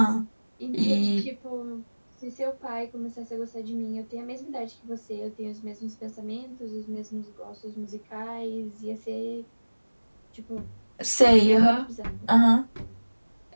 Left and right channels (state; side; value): inverted; both; correlation -1.00